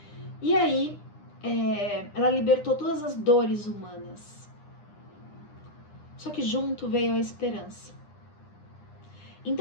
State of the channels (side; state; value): right; late; 9.9 ms